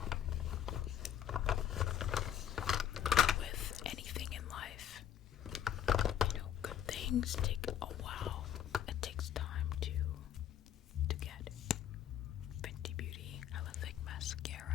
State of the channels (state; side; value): quieter; right; 9.9 dB